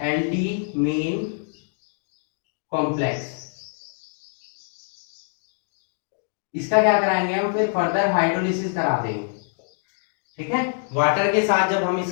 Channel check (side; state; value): right; silent; digital silence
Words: एल्डीमीन कॉम्प्लेक्स। इसका क्या कराएंगे हम, फिर फर्दर हाइड्रोलिसिस करा देंगे। ठीक है, वाटर के साथ जब हम